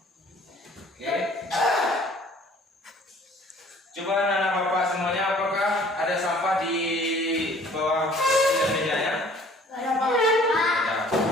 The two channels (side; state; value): both; normal; correlation 0.54